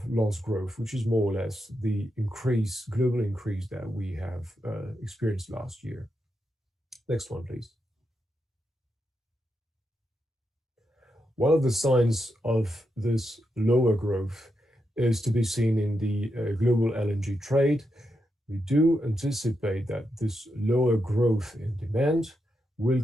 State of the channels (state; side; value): normal; both; correlation 0.85